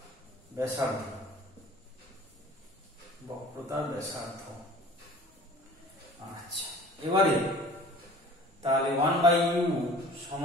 ব্যাসার্ধ, বক্রতা ব্যাসার্ধ। আচ্ছা, এবারে তাহলে 1/u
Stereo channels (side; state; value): both; normal; correlation 0.46